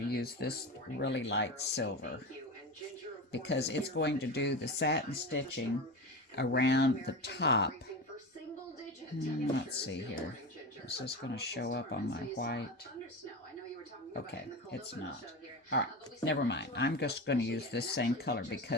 to use this really light silver because it's going to do the satin stitching around the top. Let's see here. Is this going to show up on my white? Okay, it's not. All right, never mind. I'm just going to use this same color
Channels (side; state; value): both; normal; correlation 0.24